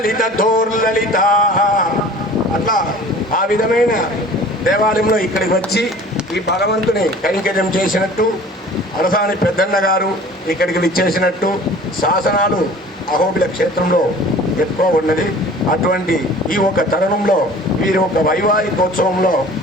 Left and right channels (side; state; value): both; normal; correlation 0.45